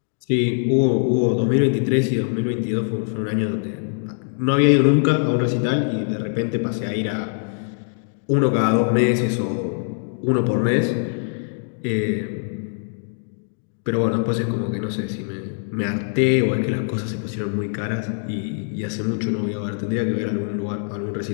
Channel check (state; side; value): silent; right; digital silence